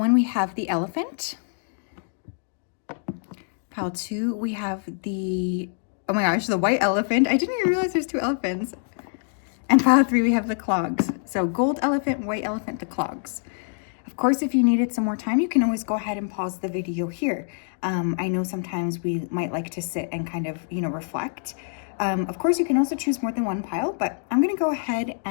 we have the elephant. Pile 2, we have the, oh my gosh, the white elephant. I didn't even realize there's 2 elephants. And pile 3, we have the clogs. So gold elephant, white elephant, the clogs. Of course, if you needed some more time, you can always go ahead and pause the video here. I know sometimes we might like to sit and kind of, reflect. Of course, you can also choose more than one pile, but I'm going to go ahead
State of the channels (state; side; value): silent; right; digital silence